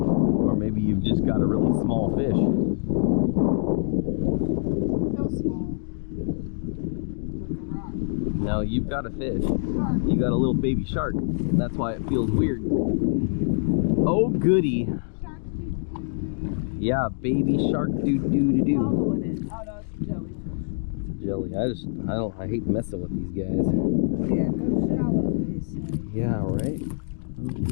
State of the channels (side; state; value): right; silent; digital silence